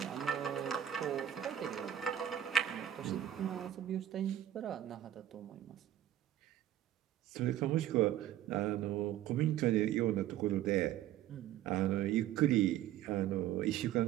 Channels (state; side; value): quieter; left; 11.8 dB